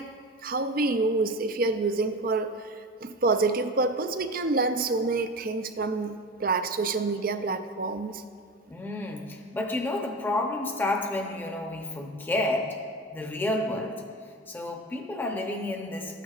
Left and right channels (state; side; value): normal; both; correlation 0.28